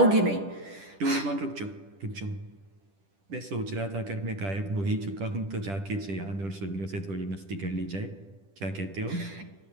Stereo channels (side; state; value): left; late; 10 ms